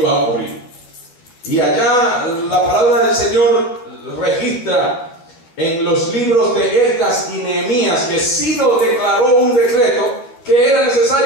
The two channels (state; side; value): late; right; 12 ms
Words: a ocurrir. Y allá la palabra del Señor registra en los libros de Esdras y Nehemías que Ciro declaró un decreto que era